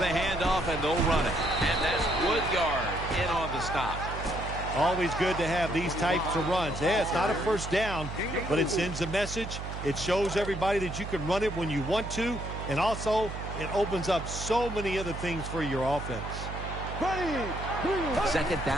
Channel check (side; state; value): right; noise; hum, 7 dB below the sound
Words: handoff, and they'll run it. And that's Woodyard in on the stop. Always good to have these types of runs. Yeah, it's not a first down, but it sends a message. It shows everybody that you can run it when you want to, and also it opens up so many other things for your offense. 2nd